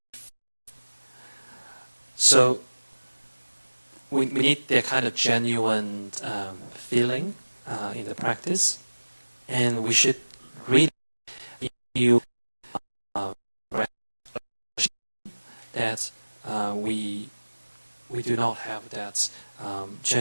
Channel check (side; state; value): both; inverted; correlation -1.00